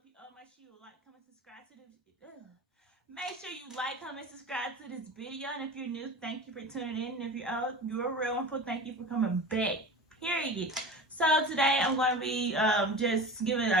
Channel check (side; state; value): both; normal; correlation 0.33